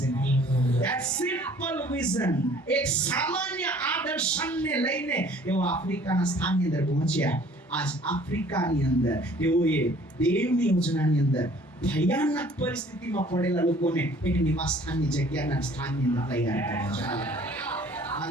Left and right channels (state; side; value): normal; both; correlation 0.54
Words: નહીં. That simple vision, એક સામાન્ય આદર્શને લઈને તેઓ આફ્રિકાના સ્થાનની અંદર પહોંચ્યા. આજ આફ્રિકાની અંદર તેઓએ દેવની યોજનાની અંદર ભયાનક પરિસ્થિતિમાં પડેલા લોકોને એક નિવાસ સ્થાનની જગ્યાના સ્થાનની અંદર તૈયાર કર્યા છે.